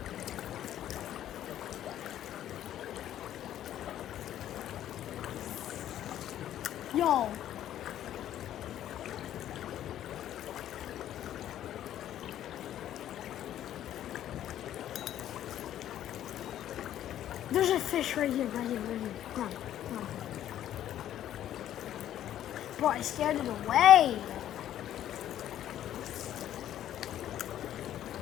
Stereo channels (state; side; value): quieter; right; 11.7 dB